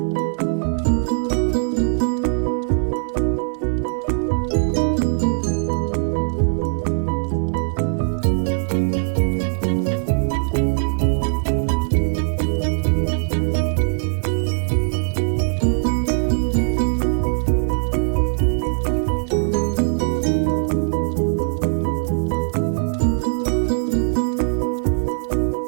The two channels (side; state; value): left; silent; digital silence